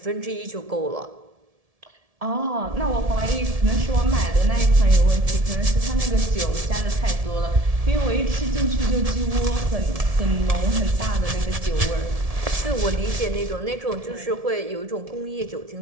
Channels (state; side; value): late; left; 1.7 ms